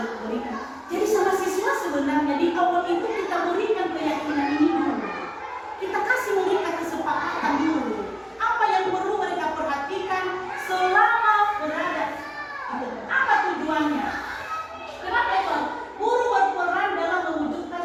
berikan. Jadi sama siswa sebenarnya di awal itu kita berikan keyakinan ini dulu. Kita kasih mereka kesepakatan dulu. Apa yang perlu mereka perhatikan selama berada. Apa tujuannya? Kenapa itu? Guru berperan dalam mewujudkan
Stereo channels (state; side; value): identical; both; correlation 1.00